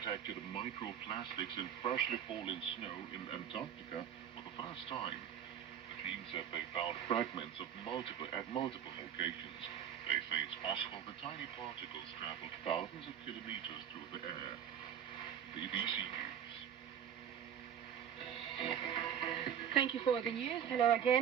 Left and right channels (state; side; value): quieter; left; 8.9 dB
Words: microplastics in freshly fallen snow in Antarctica for the first time. The team said they found fragments at multiple locations. They say it's possible the tiny particles traveled thousands of kilometers through the air. BBC News. Thank you for the news. Hello